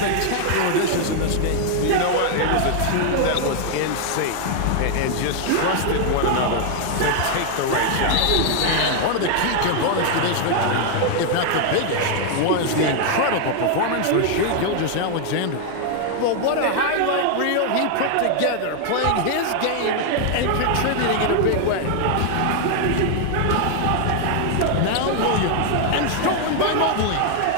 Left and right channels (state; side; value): different; both; correlation 0.00